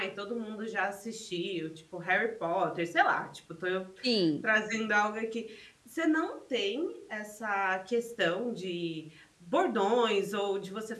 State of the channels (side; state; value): both; identical; correlation 1.00